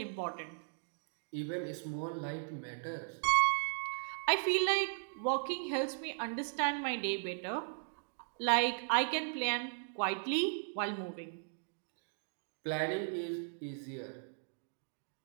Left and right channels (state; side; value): silent; left; digital silence